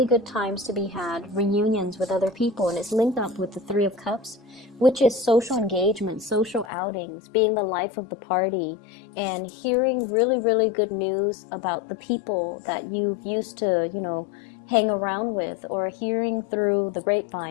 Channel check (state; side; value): drops out; right; at 6.7 s